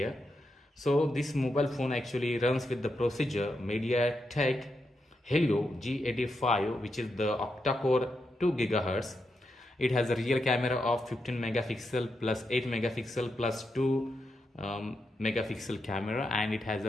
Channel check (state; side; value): normal; both; correlation 0.84